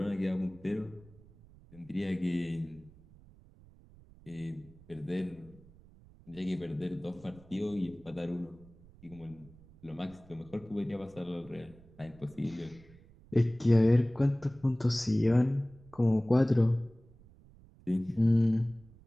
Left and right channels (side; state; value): right; noise; rumble, 24 dB below the sound